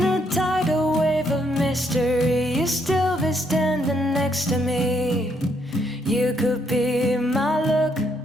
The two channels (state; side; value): normal; both; correlation 0.73